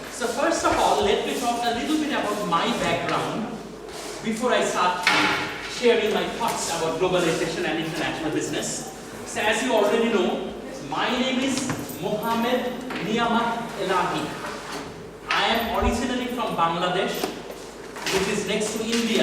So first of all, let me talk a little bit about my background before I start sharing my thoughts about globalization and international business. So as you already know, my name is Mohammed Niyamat Elahi. I am originally from Bangladesh, which is next to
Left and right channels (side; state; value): both; identical; correlation 1.00